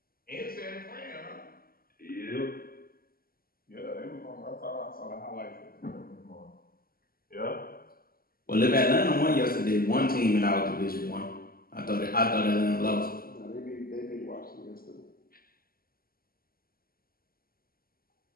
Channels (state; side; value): late; right; 0.43 ms